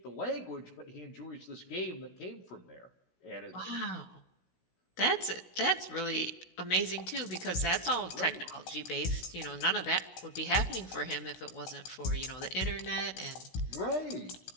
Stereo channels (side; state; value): right; late; 16 ms